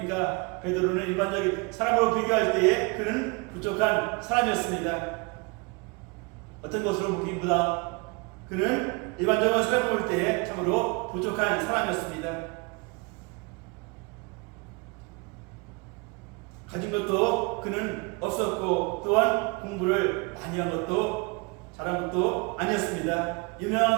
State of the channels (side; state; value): left; quieter; 29.1 dB